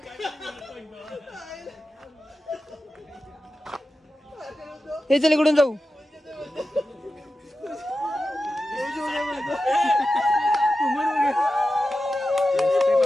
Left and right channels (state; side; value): normal; both; correlation 0.92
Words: हे चल इकडून जाऊ.